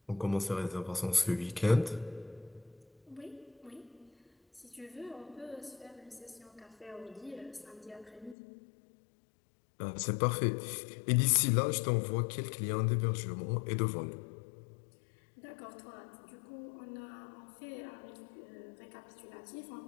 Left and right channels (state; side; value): drops out; right; at 8.3 s